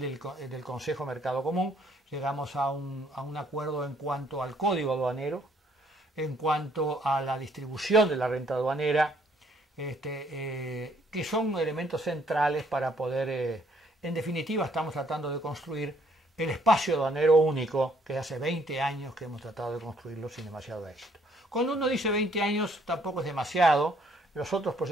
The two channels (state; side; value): normal; both; correlation 0.66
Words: del Consejo Mercado Común, llegamos a un acuerdo en cuanto al código aduanero, en cuanto a la distribución de la renta aduanera, que son elementos centrales para poder, en definitiva estamos tratando de construir el espacio aduanero único, que hace 20 años que hemos tratado de construirlo sin demasiado éxito. Cuando uno dice 20 años tampoco es demasiado, los otros